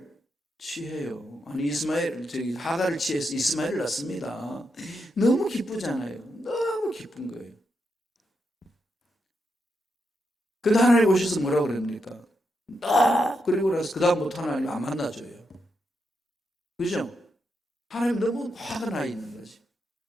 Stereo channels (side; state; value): both; normal; correlation 0.84